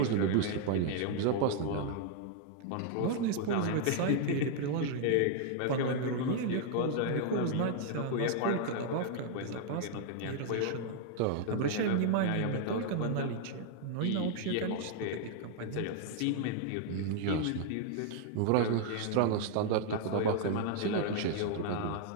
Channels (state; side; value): different; both; correlation 0.00